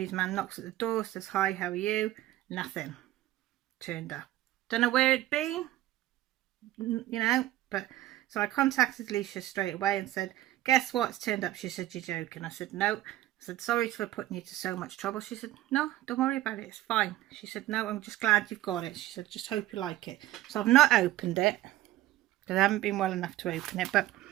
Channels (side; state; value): left; quieter; 15.2 dB